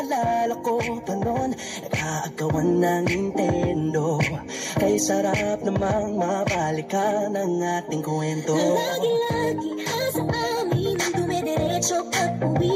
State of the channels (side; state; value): both; identical; correlation 1.00